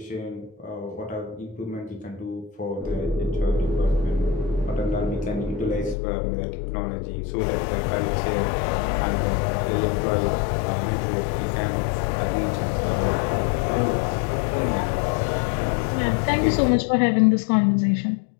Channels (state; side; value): drops out; right; at 6.0 s